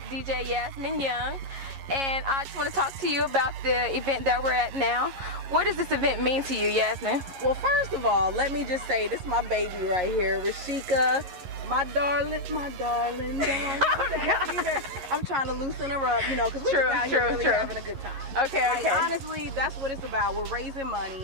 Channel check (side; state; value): left; late; 11 ms